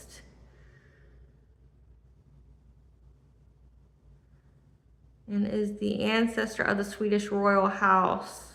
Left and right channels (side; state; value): both; identical; correlation 1.00